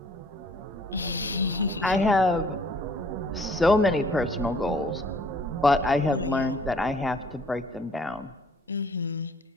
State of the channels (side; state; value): both; normal; correlation 0.58